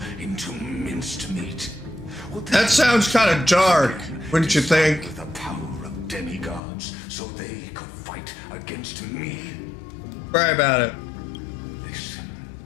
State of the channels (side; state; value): right; drops out; at 6.6 s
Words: into minced meat? That sounds kind of dark, wouldn't you think? The power of demigods so they could fight against me? Cry about it. Listen,